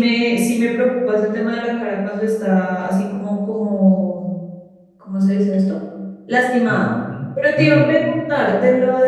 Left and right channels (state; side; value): identical; both; correlation 1.00